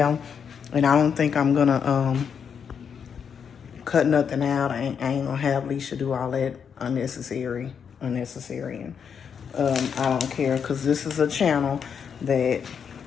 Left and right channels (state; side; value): quieter; right; 7.1 dB